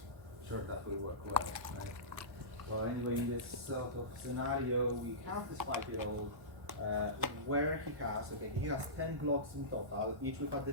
Sure, that will work well, right? Well, anyway, in this sort of scenario, we have this 5-year-old where he has 10 blocks in total, each with a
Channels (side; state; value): left; late; 1.1 ms